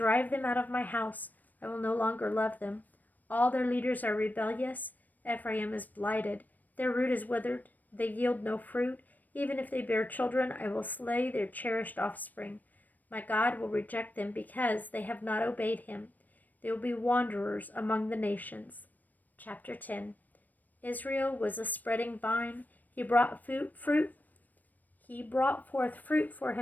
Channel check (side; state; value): right; late; 0.084 ms